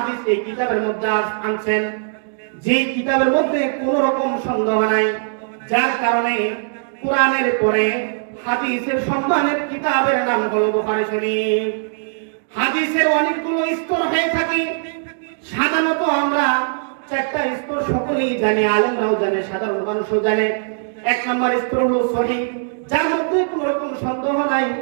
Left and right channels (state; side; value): silent; left; digital silence